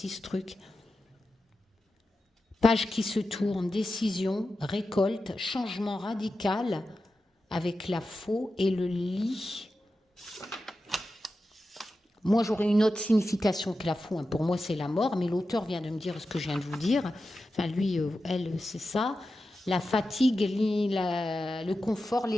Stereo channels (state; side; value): normal; both; correlation 0.92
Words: ce truc. Page qui se tourne, décision, récolte, changement radical avec la faux et le lit. Moi, j'aurais une autre signification que la faux. Hein. Pour moi, c'est la mort, mais l'auteur vient de me dire ce que je viens de vous dire. Enfin, lui, elle, c'est ça. La fatigue, le confort,